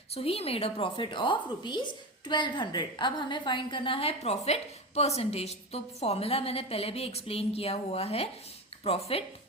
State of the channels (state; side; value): normal; both; correlation 0.22